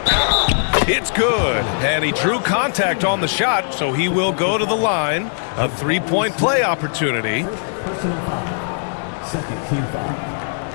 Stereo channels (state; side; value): silent; right; 66 dB below the other